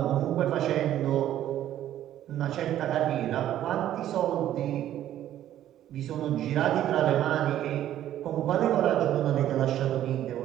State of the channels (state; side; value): quieter; left; 12.1 dB